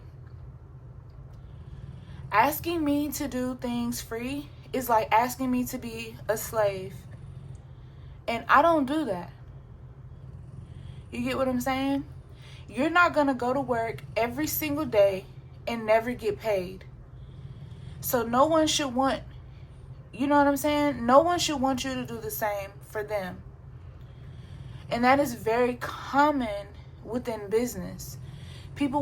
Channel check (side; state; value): both; identical; correlation 1.00